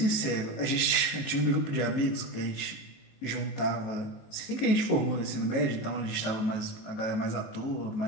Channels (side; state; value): right; late; 19 ms